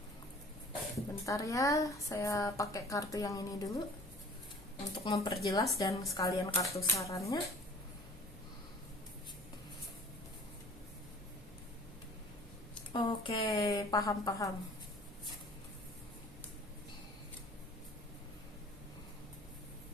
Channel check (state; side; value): normal; both; correlation 0.47